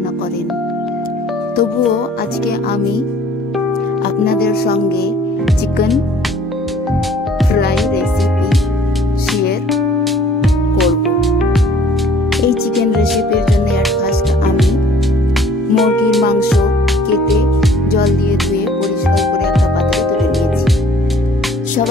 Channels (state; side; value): normal; both; correlation 0.55